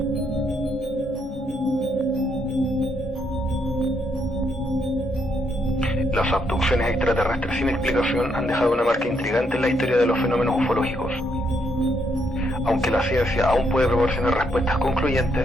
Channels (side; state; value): both; normal; correlation 0.75